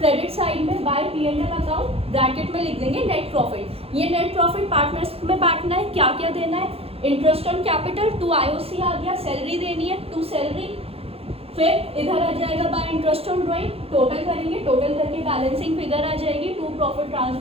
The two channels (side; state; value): left; late; 0.28 ms